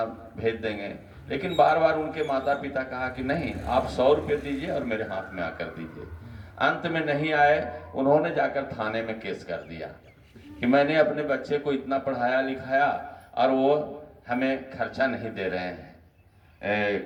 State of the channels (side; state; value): both; identical; correlation 1.00